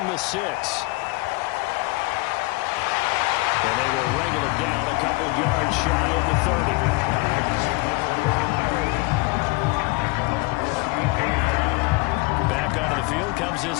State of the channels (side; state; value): right; quieter; 24.5 dB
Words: the 6. And they will wrangle it down a couple yards shy of the 30. Back onto the field comes